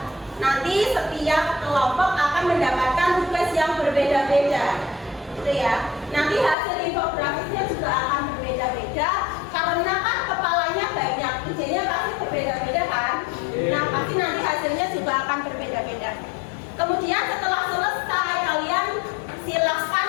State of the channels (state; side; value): drops out; right; at 6.6 s